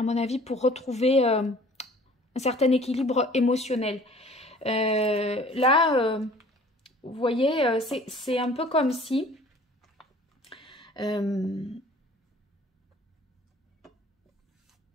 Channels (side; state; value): both; normal; correlation 0.51